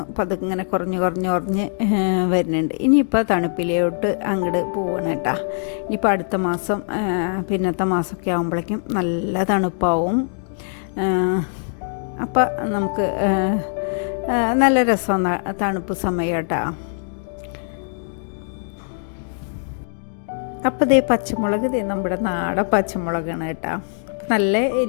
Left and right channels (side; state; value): right; silent; 64 dB below the other